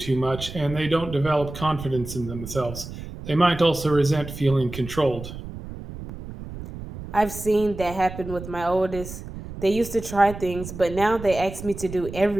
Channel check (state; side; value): noise; right; rumble, 11 dB below the sound